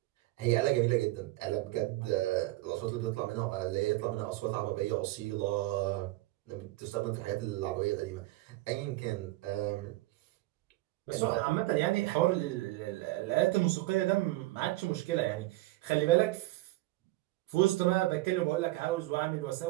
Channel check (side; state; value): left; quieter; 19.0 dB